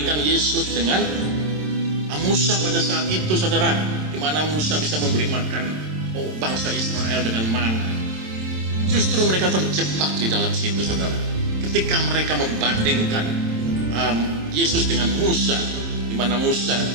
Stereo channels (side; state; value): left; late; 27 ms